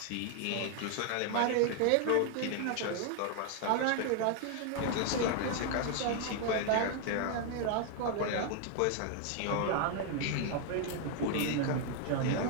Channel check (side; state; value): both; different; correlation 0.00